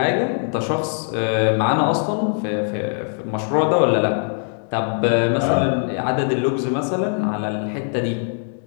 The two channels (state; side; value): silent; right; 65 dB below the other